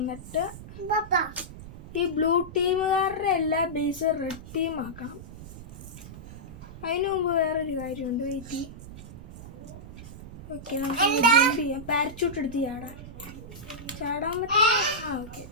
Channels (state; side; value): noise; right; rumble, 14 dB below the sound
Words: ഈ ബ്ലൂ ടീമുകാരുടെ എല്ലാ ബേസ് റെഡ് ടീം ആക്കണം. അതിനു മുമ്പ് വേറൊരു കാര്യമുണ്ട്, വെയിറ്റ്. ഓക്കെ, നമുക്ക് ജമ്പ് ചെയ്യാം. പാരച്യൂട്ട് എടുത്ത് ചാടാൻ പറ്റും. ഓക്കെ,